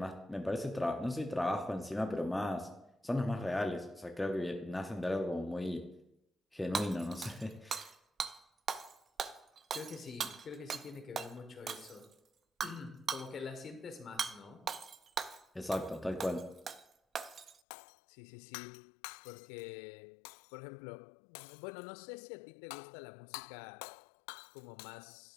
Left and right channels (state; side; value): drops out; right; at 17.6 s